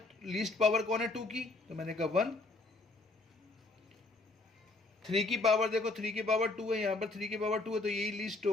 लीस्ट पावर कौन है, 2 की, तो मैंने कहा 1। 3 की पावर देखो, 3 की पावर 2 है, यहाँ पर 3 की पावर 2 है, तो यही लीस्ट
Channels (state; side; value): quieter; right; 3.3 dB